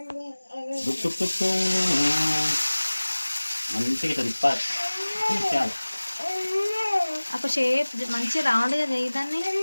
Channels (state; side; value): inverted; both; correlation -1.00